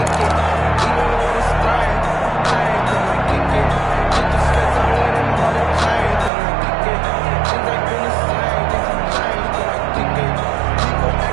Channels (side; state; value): left; drops out; at 6.3 s